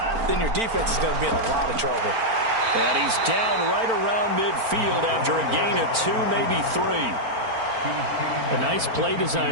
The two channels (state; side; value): late; left; 4.4 ms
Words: then your defense is going to be in a lot of trouble. And he's down right around midfield after a gain of 2, maybe 3. A nice play